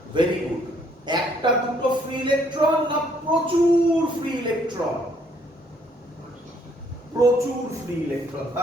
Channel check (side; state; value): both; normal; correlation 0.66